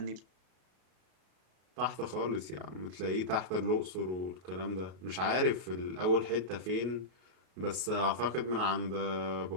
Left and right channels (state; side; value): late; left; 33 ms